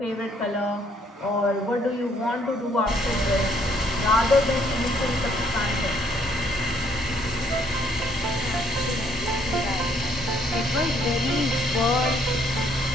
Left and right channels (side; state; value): both; normal; correlation 0.66